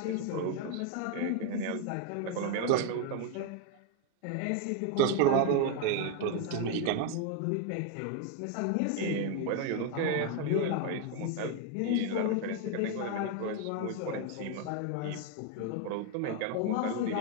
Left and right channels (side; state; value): both; different; correlation 0.01